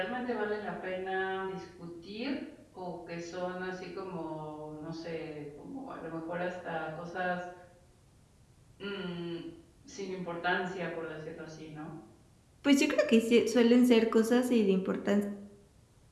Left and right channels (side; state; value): both; identical; correlation 1.00